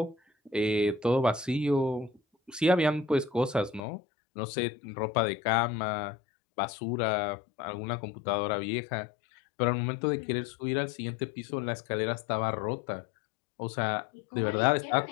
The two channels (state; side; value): drops out; right; at 3.9 s